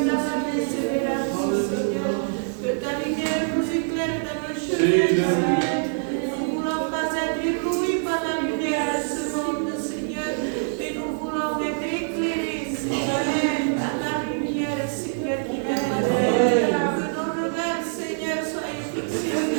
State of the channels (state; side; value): silent; left; 62 dB below the other